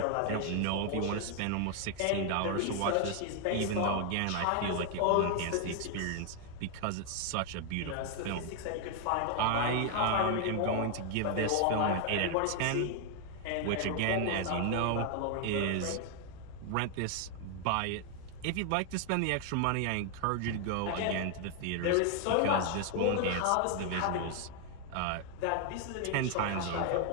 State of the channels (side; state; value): both; different; correlation 0.00